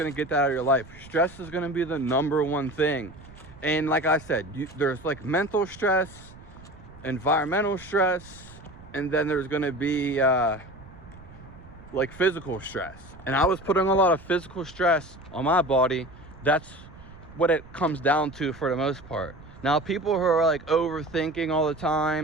to get that out of your life, stress is going to be the number one thing. And like I said, there's like mental stress, environmental stress, and then there's going to be like physical stress. And I was putting a lot of physical stress on my body. That's what it comes down to for the most part. Now, people who are like overthinking all the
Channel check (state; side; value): noise; right; rumble, 20 dB below the sound